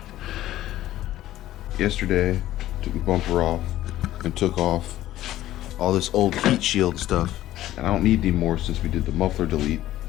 Yesterday, took the bumper off and took off all this old heat shield stuff. And I don't need any more since we did the muffler delete.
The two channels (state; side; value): quieter; right; 14.1 dB